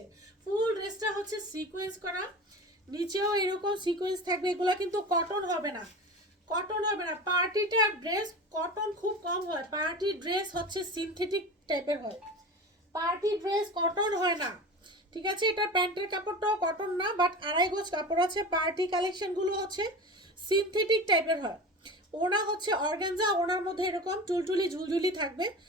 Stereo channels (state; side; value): normal; both; correlation 0.32